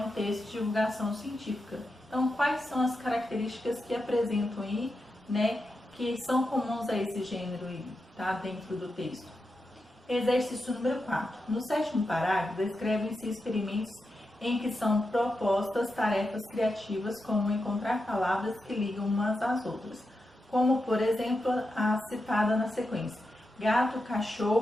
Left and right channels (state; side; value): normal; both; correlation 0.88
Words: texto de divulgação científica. Então, quais são as características que apresentam aí, né, que são comuns a esse gênero aí, tá, dentro do texto? Exercício número 4. No 7º parágrafo, descrevem-se experimentos em que são propostas tarefas criativas, como encontrar palavras que ligam umas às outras, como, por exemplo, a citada na sequência: gato,